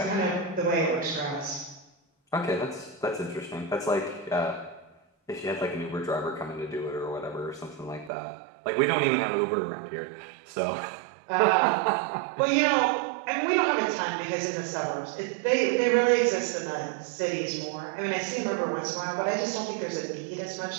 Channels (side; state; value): left; drops out; at 8.1 s